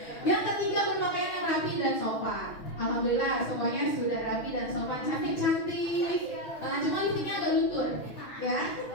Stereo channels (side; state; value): right; late; 6.1 ms